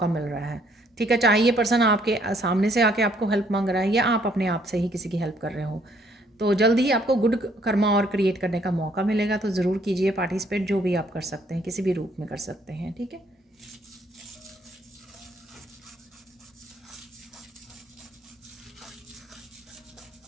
मिल रहा है, ठीक है। चाहे ये पर्सन आपके सामने से आके आपको हेल्प मांग रहा है या आप अपने आप से ही किसी की हेल्प कर रहे हो, तो जल्द ही आपको गुड कर्मा और क्रिएट करने का मौका मिलेगा। तो ज़रूर कीजिए पार्टिसिपेट, जो भी आप कर सकते हैं, किसी भी रूप में कर सकते हैं, ठीक है।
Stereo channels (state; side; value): normal; both; correlation 0.66